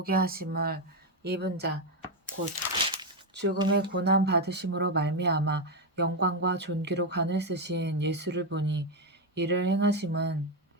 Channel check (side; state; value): both; normal; correlation 0.07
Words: 하심을 입은 자 곧 죽음의 고난 받으심으로 말미암아 영광과 존귀로 관을 쓰신 예수를 보니 이를 행하심은